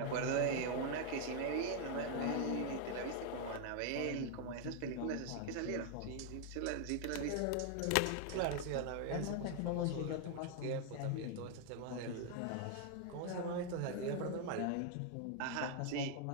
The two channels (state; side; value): different; both; correlation 0.00